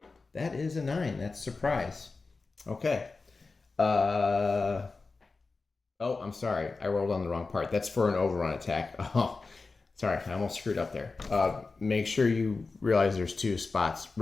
That is a 9. That's surprise. Okay. Oh, I'm sorry. I rolled on the wrong part. That's for an overrun attack. Oh, sorry. I almost screwed up there. Make sure you realize there's 2 spots.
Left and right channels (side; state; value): right; quieter; 4.0 dB